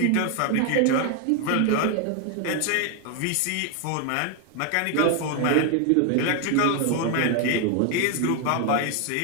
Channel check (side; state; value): both; different; correlation 0.01